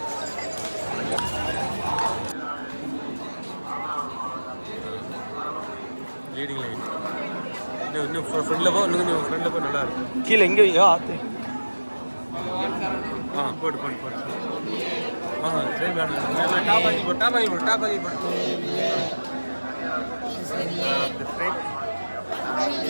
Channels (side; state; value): both; inverted; correlation -1.00